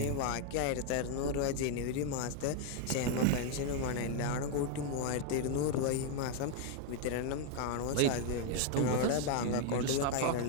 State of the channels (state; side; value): different; both; correlation 0.00